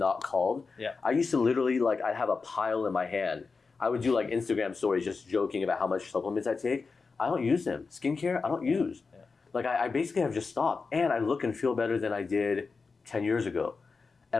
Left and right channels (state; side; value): quieter; right; 4.6 dB